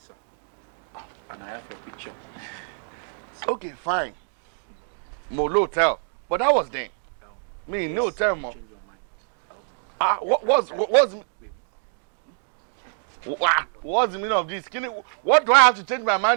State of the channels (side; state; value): left; silent; digital silence